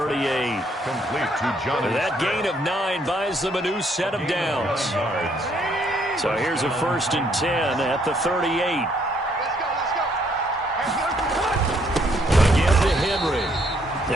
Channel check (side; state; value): both; normal; correlation 0.69